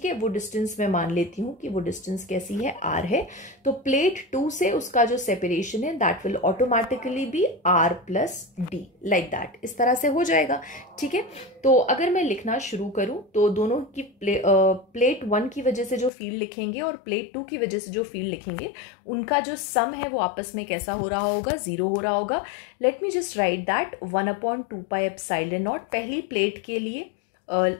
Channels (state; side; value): drops out; right; at 16.1 s